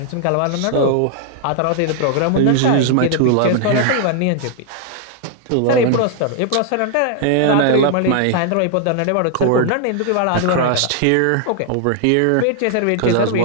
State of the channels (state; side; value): different; both; correlation 0.00